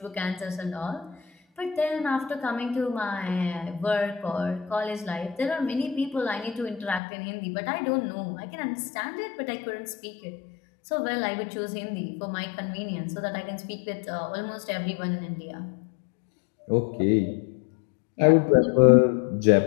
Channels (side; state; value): right; drops out; at 7.0 s